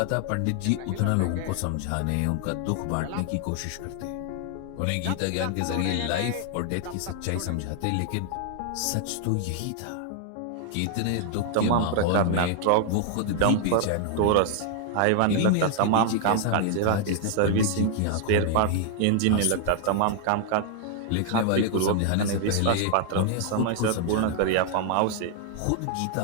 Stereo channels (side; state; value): both; different; correlation 0.00